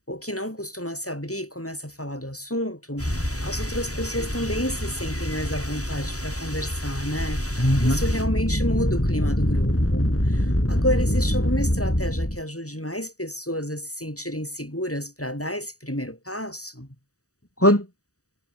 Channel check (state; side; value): late; right; 0.66 ms